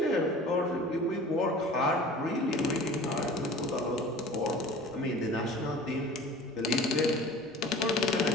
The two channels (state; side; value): normal; both; correlation 0.42